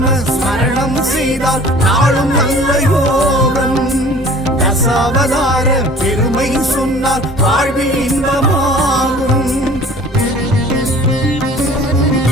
ஸ்மரணம் செய்தால் நாளும் நல்ல யோகம். தசாவதார பெருமை சொன்னால் வாழ்வில் இன்பமாகும்.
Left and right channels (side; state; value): both; normal; correlation 0.48